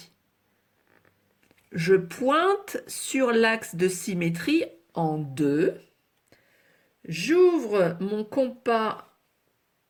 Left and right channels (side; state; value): both; identical; correlation 1.00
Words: Je pointe sur l'axe de symétrie en 2. J'ouvre mon compas